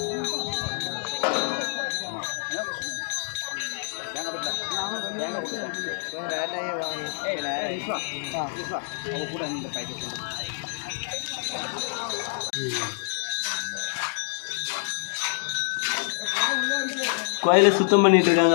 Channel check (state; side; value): silent; right; digital silence